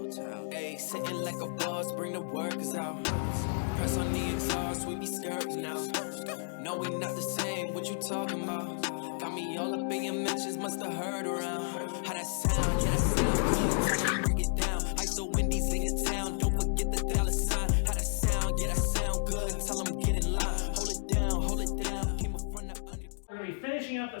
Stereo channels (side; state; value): right; silent; digital silence